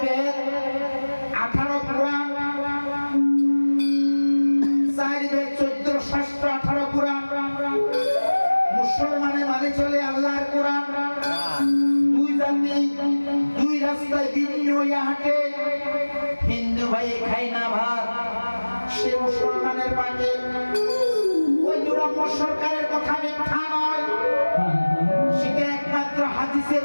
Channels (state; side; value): inverted; both; correlation -1.00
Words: বেদ 18 পুরাণ, 4 বেদ 14 শাস্ত্র 18 পুরাণ। মুসলমানে মানে চলে আল্লাহর কোরআন। দুই জাতি দুই রাস্তায় ভিন্ন হইয়া হাঁটে। হিন্দু ভাই খায় না ভাত, সে মুসলমানের পাশে। ওই দুরম্য সরকারের কথা মিথ্যা নয়, সেটা একমাত্র হাদিসের